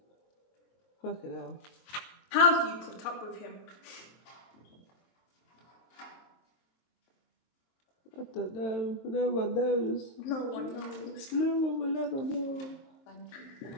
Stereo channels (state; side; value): late; right; 22 ms